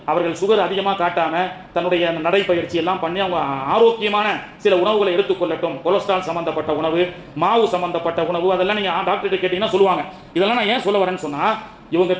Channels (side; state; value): both; identical; correlation 1.00